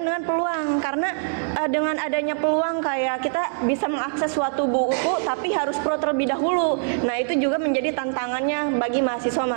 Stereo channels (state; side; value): silent; left; digital silence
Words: dengan peluang, karena dengan adanya peluang kayak kita bisa mengakses suatu buku tapi harus pro terlebih dahulu. Nah itu juga menjadi tantangannya bagi